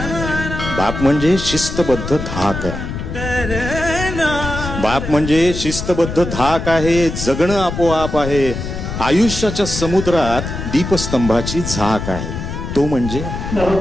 बाप म्हणजे शिस्तबद्ध धाक आहे. बाप म्हणजे शिस्तबद्ध धाक आहे. जगणं आपोआप आहे. आयुष्याच्या समुद्रात दीपस्तंभाची झाक आहे. तो म्हणजे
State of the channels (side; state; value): left; noise; rumble, 6 dB below the sound